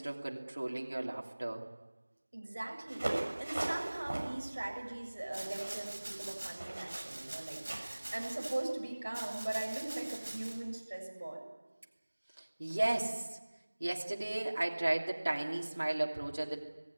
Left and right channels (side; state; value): both; inverted; correlation -1.00